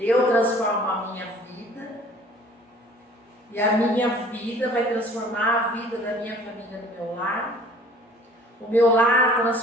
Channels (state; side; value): normal; both; correlation 0.51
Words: transformo a minha vida, e a minha vida vai transformar a vida da minha família no meu lar. O meu lar